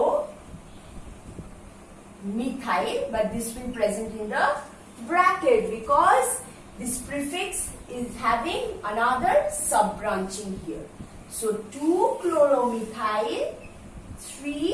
But this will present in the bracket because this prefix is having another sub-branching here. So 2-chloromethyl,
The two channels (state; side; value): identical; both; correlation 1.00